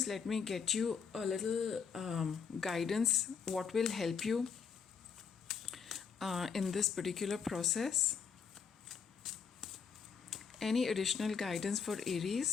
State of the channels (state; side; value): quieter; right; 6.3 dB